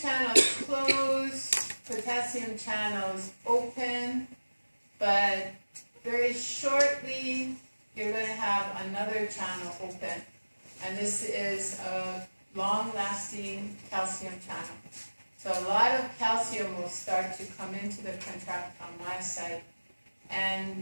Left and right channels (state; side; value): inverted; both; correlation -1.00